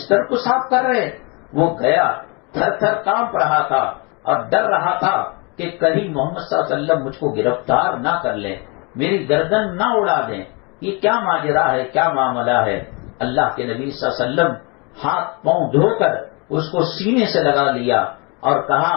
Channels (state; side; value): quieter; right; 30.7 dB